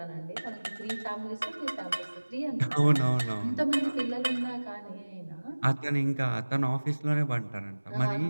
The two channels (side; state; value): both; inverted; correlation -1.00